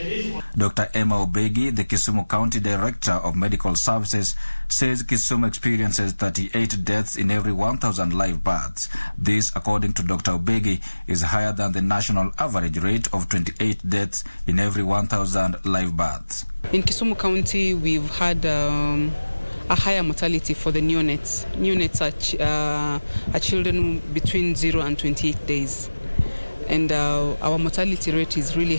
Dr. Emma Obegi, the Kisumu County Director of Medical Services, says Kisumu experiences 38 deaths in every 1,000 live births. This, according to Dr. Obegi, is higher than the national average rate of 28 deaths in every 1,000 live births. In Kisumu County, we've had a higher mortality for the neonates. Neonates are children between 0 and 28 days. And our mortality rate is really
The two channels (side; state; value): both; inverted; correlation -1.00